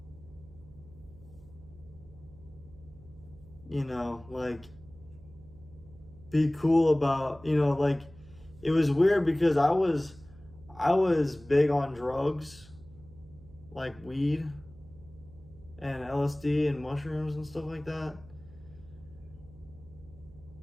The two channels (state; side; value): noise; right; hum, 21 dB below the sound